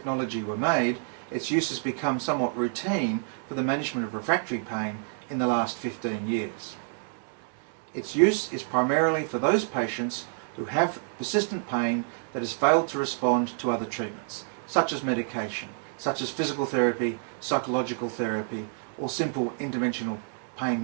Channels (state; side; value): silent; left; 59 dB below the other